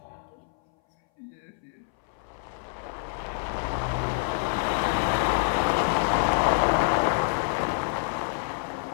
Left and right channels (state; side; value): silent; right; 59 dB below the other